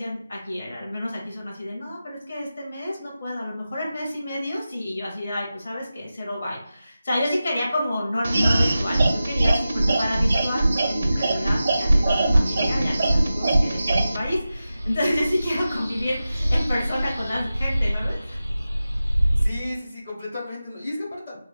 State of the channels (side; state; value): both; inverted; correlation -0.93